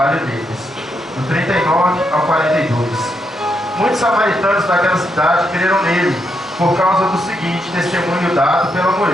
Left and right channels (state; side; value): normal; both; correlation 0.80